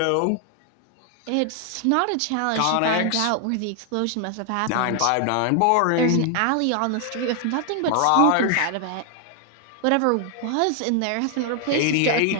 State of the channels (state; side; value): different; both; correlation 0.00